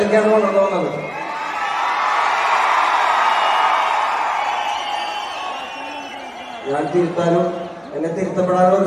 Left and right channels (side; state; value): both; identical; correlation 1.00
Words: വളർന്നു വന്നത്. ഞാൻ തിരുത്താനും എന്നെ തിരുത്തപ്പെടാനുള്ള